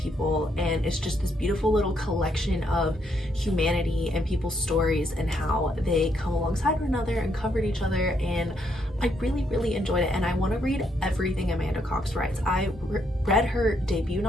and it's just this beautiful little collection of humanity and people's stories and how they come alongside one another and comfort each other. And I really enjoyed it, and I want to read everything Amanda Cox writes. I read her debut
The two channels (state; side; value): normal; both; correlation 0.75